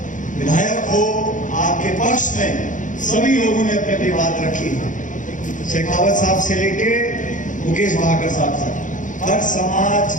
विधायक हो, आपके पक्ष में सभी लोगों ने अपनी अपनी बात रखी। शेखावत साहब से लेके मुकेश भाकर साहब तक, हर समाज,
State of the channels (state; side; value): late; right; 0.37 ms